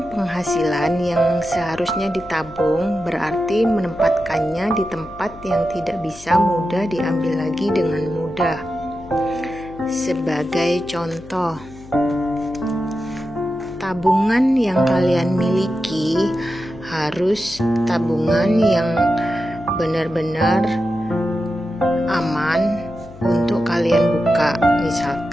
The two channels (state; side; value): noise; left; hum, 19 dB below the sound